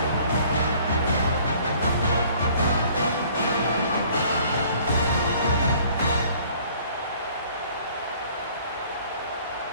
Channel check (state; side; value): inverted; both; correlation -0.55